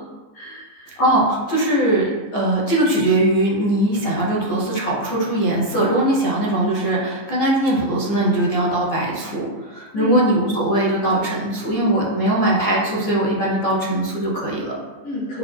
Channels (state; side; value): late; right; 15 ms